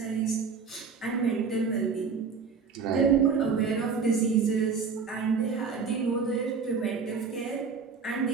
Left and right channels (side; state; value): left; quieter; 5.5 dB